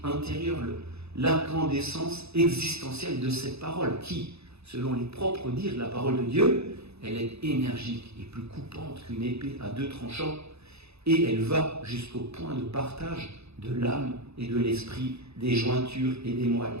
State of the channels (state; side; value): late; left; 0.79 ms